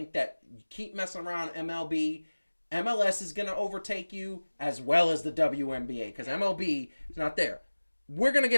that you keep messing around MLB. MLS is going to overtake you as well as the WNBA because MLB is not there. We're going to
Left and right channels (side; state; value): both; inverted; correlation -1.00